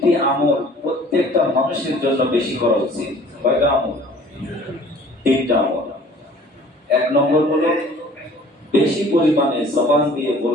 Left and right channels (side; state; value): both; normal; correlation 0.50